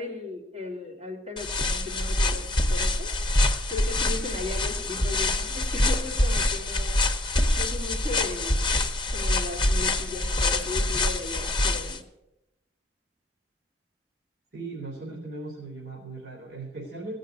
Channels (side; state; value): both; normal; correlation 0.61